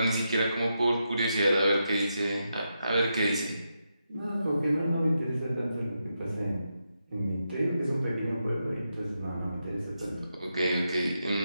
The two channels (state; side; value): inverted; both; correlation -0.85